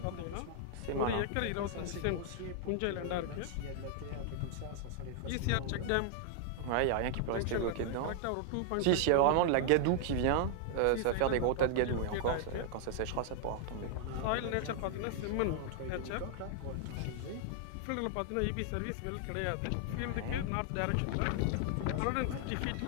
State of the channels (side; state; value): both; different; correlation 0.00